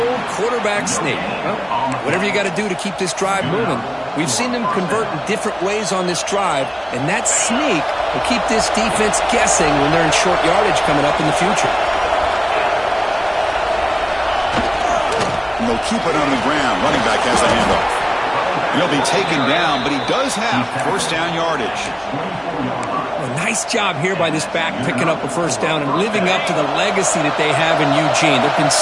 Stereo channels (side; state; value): both; identical; correlation 1.00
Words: quarterback sneak. Well, whatever you got to do to keep this drive moving. We've seen them convert in different ways on this drive, and that sneak will keep this defense guessing when they're in short yardage coming up in the future. And they'll keep it on the ground. Running back has a handoff. He'll be taken down, but he does have first down yardage. A nice job here by this back picking up a first down and living up to the legacy that they have in Eugene. There have been